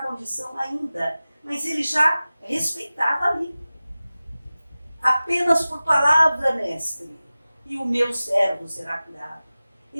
ainda, mas ele já respeitava ali. Apenas por palavra, mestre, e o meu servo será curado.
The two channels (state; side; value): inverted; both; correlation -0.96